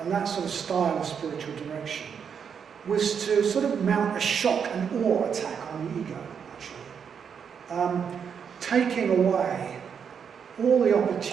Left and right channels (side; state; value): left; quieter; 7.1 dB